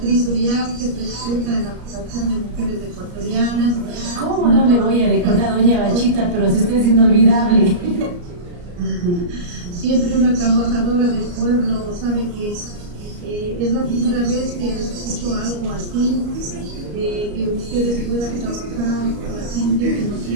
Uriarte, presidenta de la Asociación de Mujeres Ecuatorianas. ¿Cómo no le voy a recordar a doña Bachita? Pero si usted es inolvidable. Siempre una trabajadora del pueblo, sabe que es la primera vez que escucho algo así, que ustedes puedan trabajar por la gente que no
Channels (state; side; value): late; left; 34 ms